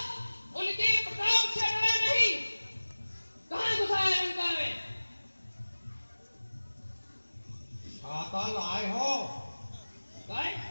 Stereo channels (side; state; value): both; inverted; correlation -1.00